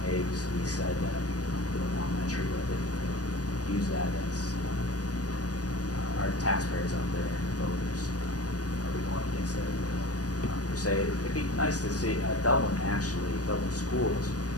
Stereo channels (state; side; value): late; right; 0.68 ms